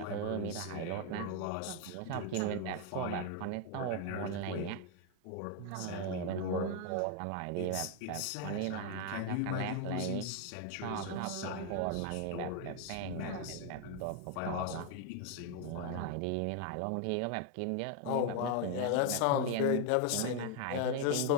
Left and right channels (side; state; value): both; different; correlation 0.01